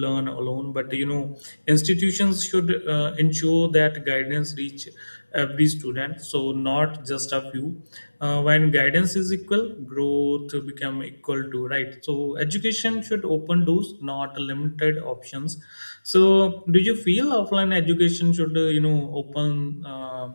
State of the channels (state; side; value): inverted; both; correlation -1.00